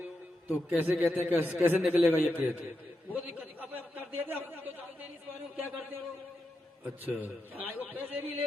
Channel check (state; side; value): normal; both; correlation 0.87